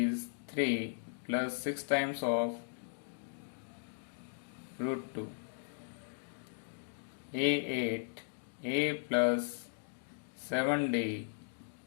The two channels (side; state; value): right; silent; digital silence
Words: is 3 plus 6 times of root 2, A8, A plus 7D,